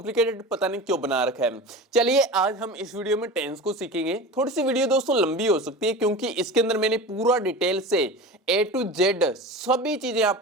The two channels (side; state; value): both; normal; correlation 0.32